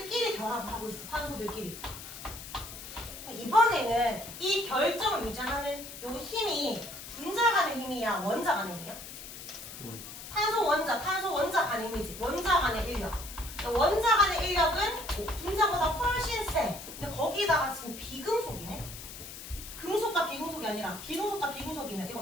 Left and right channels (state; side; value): noise; left; hiss, 12 dB below the sound